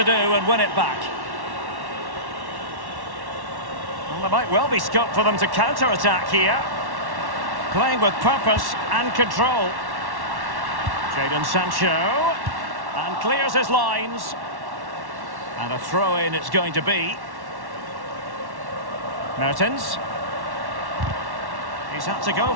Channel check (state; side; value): late; left; 1.1 ms